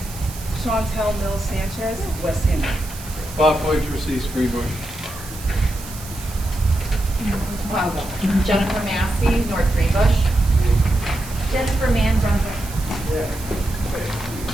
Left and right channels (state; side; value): noise; right; hiss, 14 dB below the sound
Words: Chantel Mills Sanchez, West End. Bob Poitras, East Greenbush. Jennifer Massey, North Greenbush. Jennifer Mann, Brunswick.